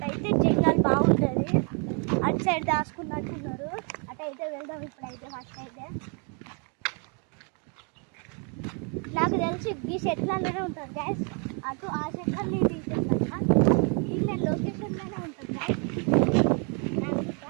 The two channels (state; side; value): quieter; left; 37.5 dB